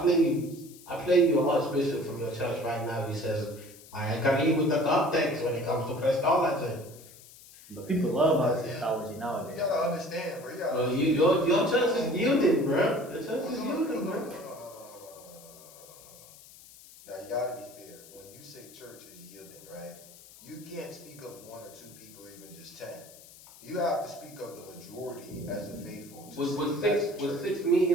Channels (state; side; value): noise; left; hiss, 20 dB below the sound